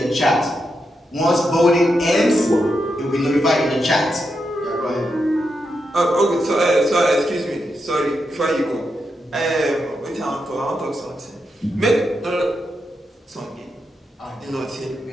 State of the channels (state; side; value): normal; both; correlation 0.85